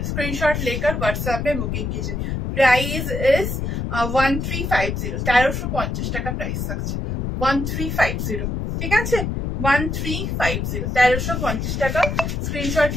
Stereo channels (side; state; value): left; noise; rumble, 2 dB below the sound